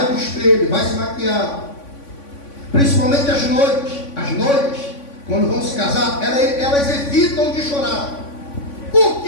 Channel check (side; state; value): right; late; 3.5 ms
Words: para o espelho, vai se maquiar, principalmente as noivas, quando vão se casar, elas evitam de chorar. Por